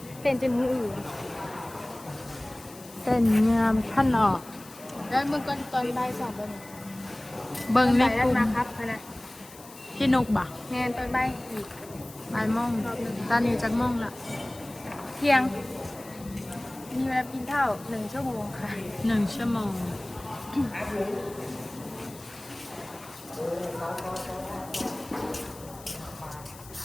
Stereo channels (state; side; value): noise; left; hiss, 19 dB below the sound